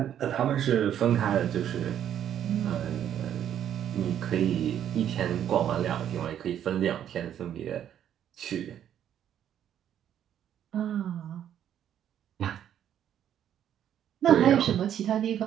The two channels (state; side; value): quieter; left; 10.1 dB